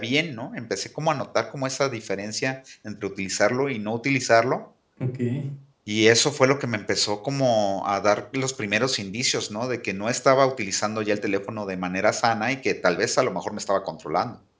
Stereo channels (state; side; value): identical; both; correlation 1.00